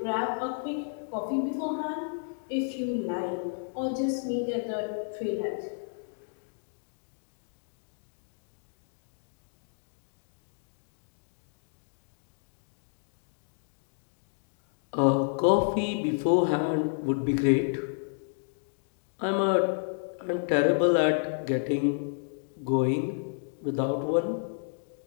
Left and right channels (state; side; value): silent; right; 57 dB below the other